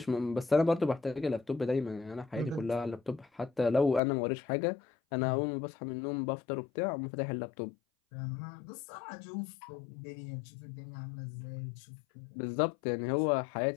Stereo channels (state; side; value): drops out; right; at 4.0 s